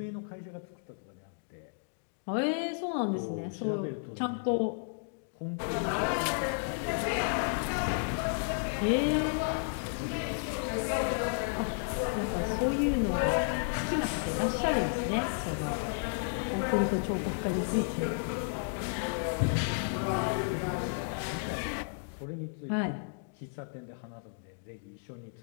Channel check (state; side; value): silent; right; digital silence